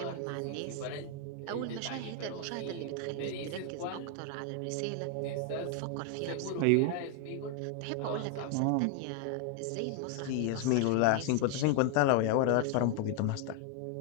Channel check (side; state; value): both; different; correlation 0.01